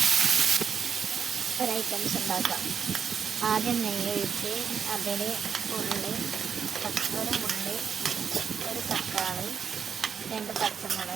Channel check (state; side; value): quieter; left; 6.8 dB